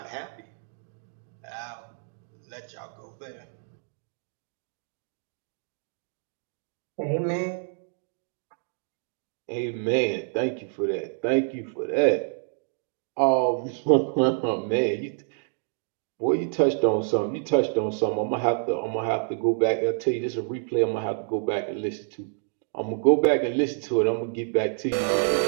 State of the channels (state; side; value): silent; left; 60 dB below the other